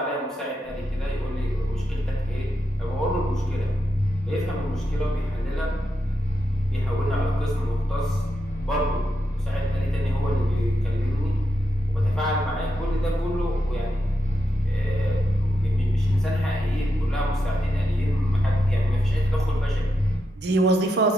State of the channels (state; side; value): normal; both; correlation 0.85